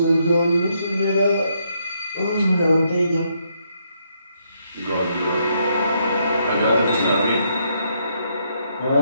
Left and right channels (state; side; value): inverted; both; correlation -0.75